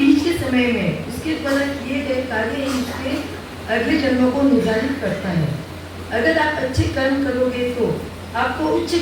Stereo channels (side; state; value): both; identical; correlation 1.00